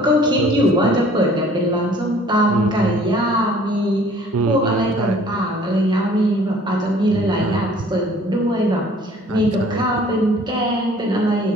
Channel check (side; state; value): both; normal; correlation 0.54